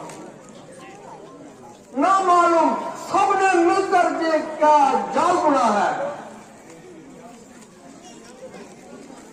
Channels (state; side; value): identical; both; correlation 1.00